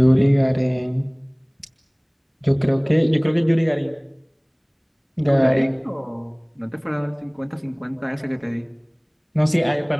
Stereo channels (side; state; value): both; identical; correlation 1.00